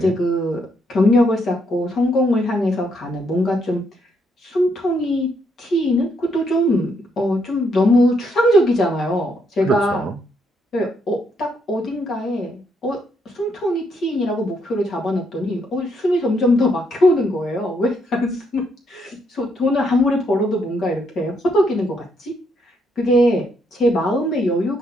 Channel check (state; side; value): normal; both; correlation 0.75